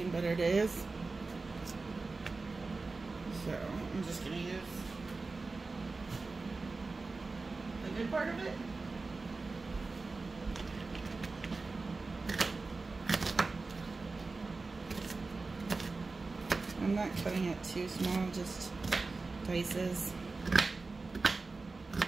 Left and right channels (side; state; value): left; quieter; 3.7 dB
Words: better days, so I'm just gonna use the good part of it. I'm not cutting it too small, just dices.